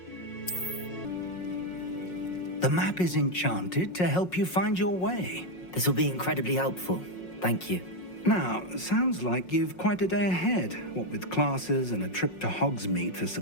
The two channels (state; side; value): late; right; 5.5 ms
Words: The map is enchanted to help you find your way. This will be incredibly helpful. Thank you. Now, sounds like you've quite a day ahead, what with classes and a trip to Hogsmeade for